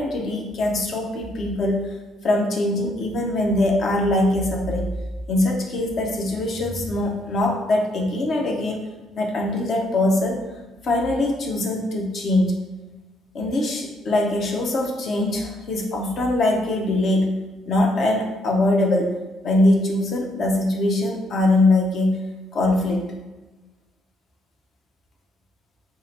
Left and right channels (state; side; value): normal; both; correlation 0.73